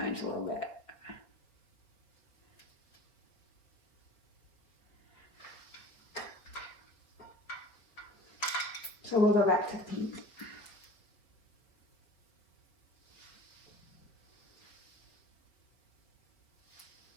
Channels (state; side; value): late; right; 4.8 ms